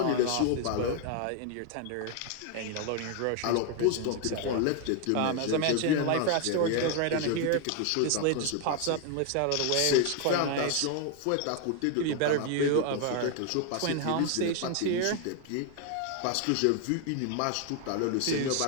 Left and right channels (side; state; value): both; different; correlation 0.01